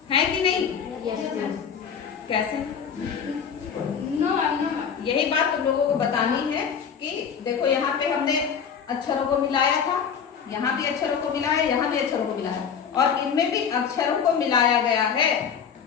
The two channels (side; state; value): right; quieter; 7.1 dB